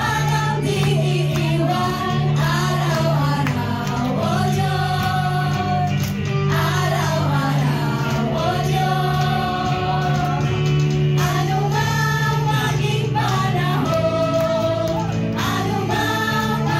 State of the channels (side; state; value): both; identical; correlation 1.00